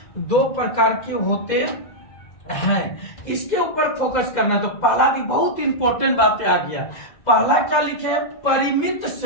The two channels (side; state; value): right; late; 2.0 ms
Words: 2 प्रकार के होते हैं। इसके ऊपर फोकस करना है। तो पहला भी बहुत इंपॉर्टेंट बातें आ गया। पहला क्या लिखे है, परिमित